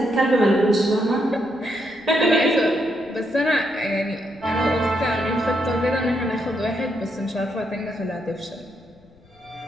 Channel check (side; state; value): left; noise; rumble, 29 dB below the sound